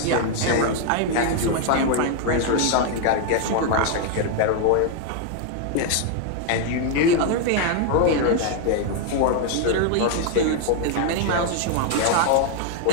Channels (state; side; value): different; both; correlation 0.00